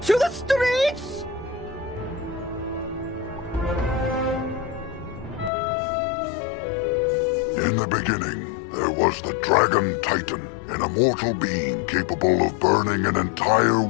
the streets! In the beginning, there was the Dragon Titan, an immortal being capable of burning an entire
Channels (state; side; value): drops out; right; at 5.5 s